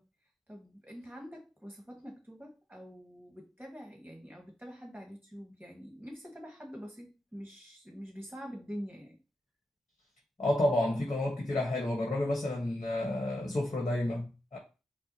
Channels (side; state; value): both; normal; correlation 0.86